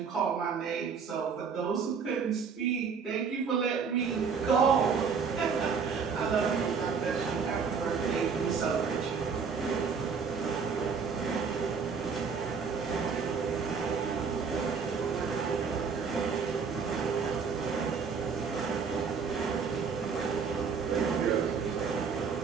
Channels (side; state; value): left; quieter; 5.8 dB